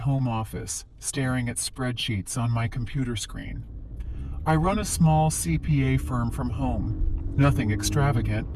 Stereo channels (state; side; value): identical; both; correlation 1.00